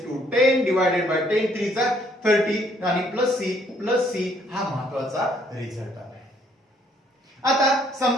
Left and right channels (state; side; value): normal; both; correlation 0.65